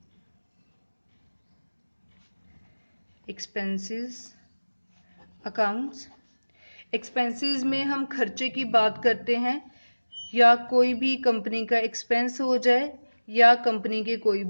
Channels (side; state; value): both; inverted; correlation -1.00